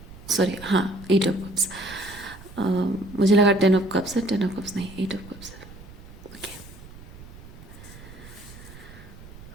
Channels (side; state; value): right; noise; rumble, 17 dB below the sound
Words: सॉरी हाँ एट ऑफ कप्स। मुझे लगा 10 ऑफ कप्स है, 10 ऑफ कप्स नहीं, 8 ऑफ कप्स है। Okay,